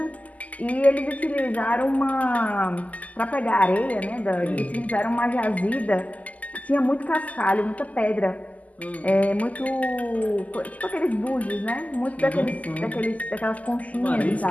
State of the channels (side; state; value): right; late; 0.075 ms